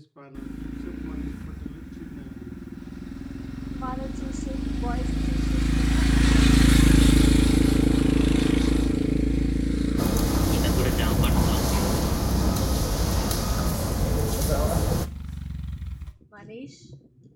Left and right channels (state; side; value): identical; both; correlation 1.00